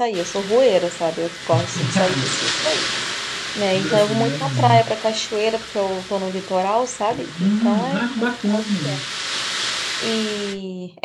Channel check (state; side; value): identical; both; correlation 1.00